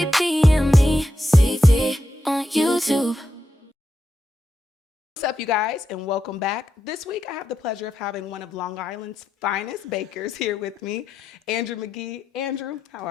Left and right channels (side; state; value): both; normal; correlation 0.86